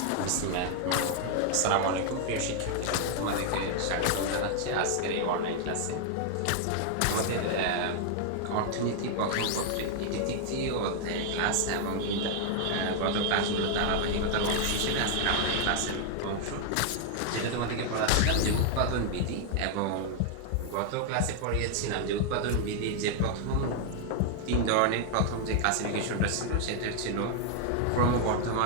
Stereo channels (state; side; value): different; both; correlation 0.00